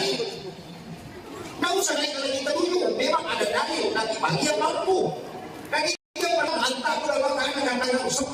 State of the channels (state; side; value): identical; both; correlation 1.00